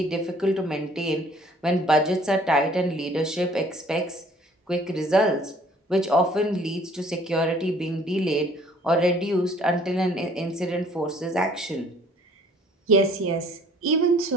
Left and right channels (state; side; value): normal; both; correlation 0.56